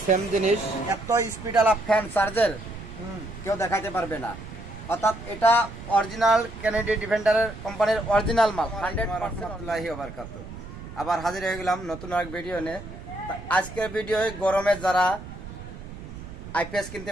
সেম জিনিস। এত স্পিড আলা ফ্যান চার্জের কেউ দেখাইতে পারবে না। অর্থাৎ এটা অরিজিনাল কেনেডি ডিফেন্ডারের কোম্পানির অরিজিনাল মাল। 100% আবার হাজির হয়ে গেলাম নতুন এক ভিডিও নিয়ে। আজকের ভিডিওয় গরমে যারা আইপিএস কিনতে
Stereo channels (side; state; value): right; noise; rumble, 13 dB below the sound